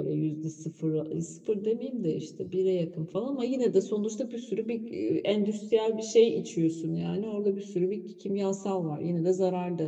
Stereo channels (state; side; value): identical; both; correlation 1.00